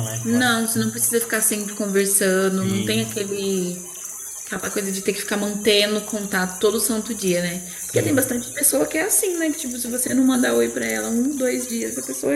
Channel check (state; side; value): identical; both; correlation 1.00